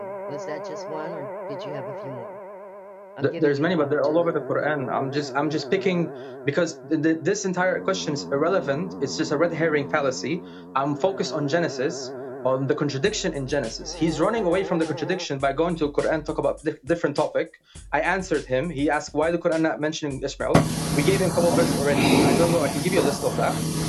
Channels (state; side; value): identical; both; correlation 1.00